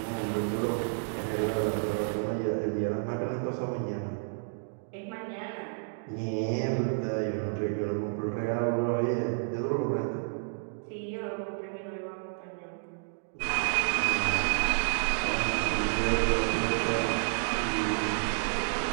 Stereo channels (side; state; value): left; silent; digital silence